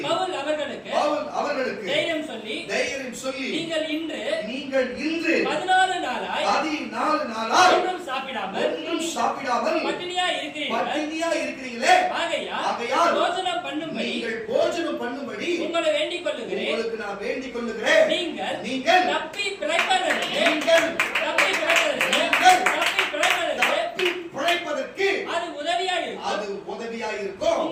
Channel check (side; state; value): both; identical; correlation 1.00